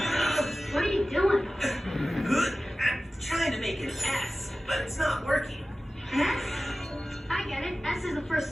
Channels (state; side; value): normal; both; correlation 0.96